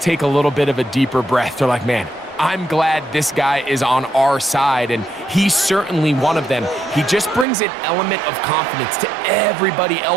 take a little bit of a deeper breath. They're like, man, I'm glad this guy is on our side, and he's certainly one of them. He just brings an element of confidence to everybody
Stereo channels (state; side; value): drops out; left; at 7.5 s